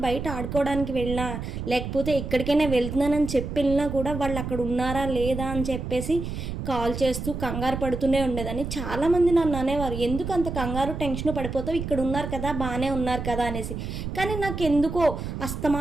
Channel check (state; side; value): noise; right; rumble, 6 dB below the sound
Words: బయట ఆడుకోవడానికి వెళ్ళినా, లేకపోతే ఎక్కడికైనా వెళ్తున్నానని చెప్పి వెళ్ళినా కూడా వాళ్ళు అక్కడ ఉన్నారా లేదా అని చెప్పేసి కాల్ చేస్తూ కంగారు పడుతూనే ఉండేదాన్ని. చాలామంది నన్ను అనేవారు, ఎందుకు అంత కంగారు టెన్షన్ పడిపోతావు, ఇక్కడ ఉన్నారు కదా, బాగానే ఉన్నారు కదా అనేసి. కానీ నాకెందుకో